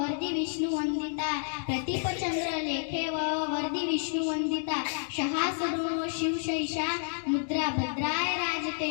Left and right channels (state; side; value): silent; right; digital silence